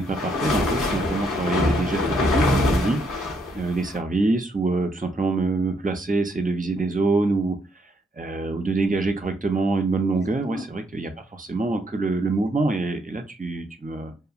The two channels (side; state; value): both; normal; correlation 0.74